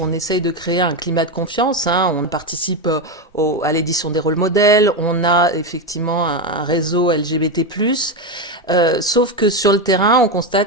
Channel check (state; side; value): normal; both; correlation 0.11